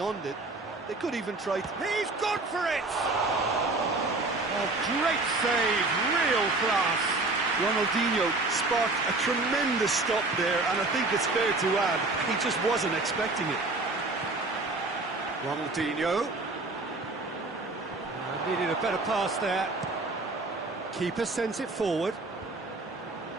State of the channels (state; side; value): quieter; left; 3.2 dB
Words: it. They could even try to... He's gone for it! Oh, great save, real class. Ronaldinho sparked a tremendous stop there, and I think it's fair to add, he just wasn't expecting it. Ronaldinho. Needed a better pass there. Keeper sends it forward.